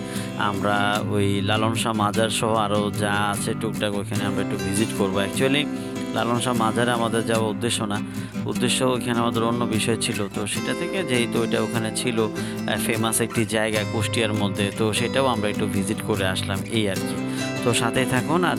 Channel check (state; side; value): noise; right; hum, 26 dB below the sound